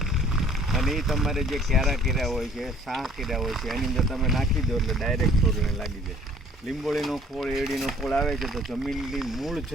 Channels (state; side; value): normal; both; correlation 0.55